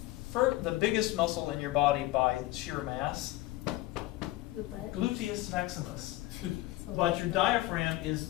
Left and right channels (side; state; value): right; quieter; 17.5 dB